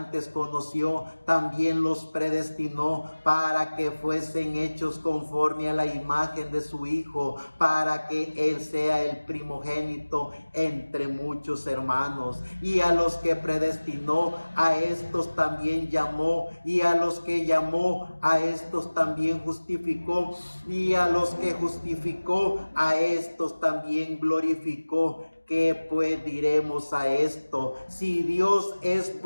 conoció, también los predestinó para que fuesen hechos conforme a la imagen de su Hijo, para que Él sea el primogénito entre muchos hermanos. Y a los que predestinó, a estos también llamó, y a los que llamó, a estos también justificó, y a los que justificó, a estos también glorificó. ¿Qué pues diremos a esto? Si Dios es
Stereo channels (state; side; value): inverted; both; correlation -1.00